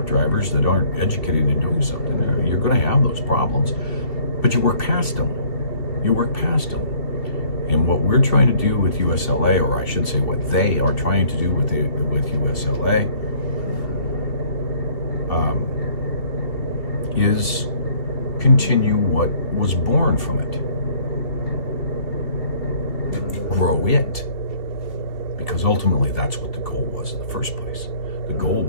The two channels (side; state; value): right; late; 2.7 ms